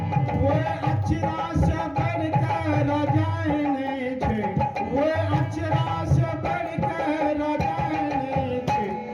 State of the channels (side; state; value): both; identical; correlation 1.00